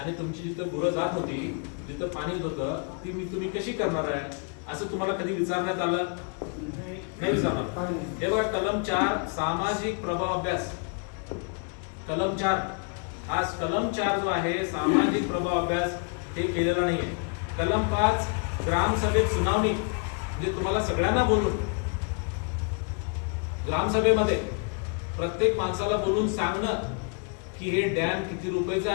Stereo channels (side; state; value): right; quieter; 37.8 dB